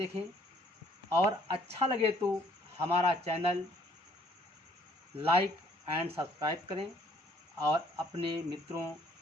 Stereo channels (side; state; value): both; normal; correlation 0.62